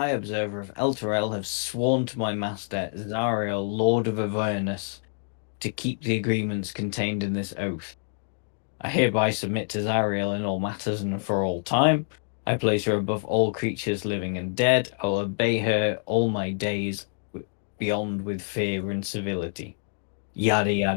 Observer of Elturel, have sworn to my master, Zariel, Lord of Avernus, to keep the agreements contained in this oath. I hereby submit to Zariel in all matters and for all time. I place her above all creatures living and dead. I will obey her all my days, beyond with fear and civility. Yada,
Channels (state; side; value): silent; right; digital silence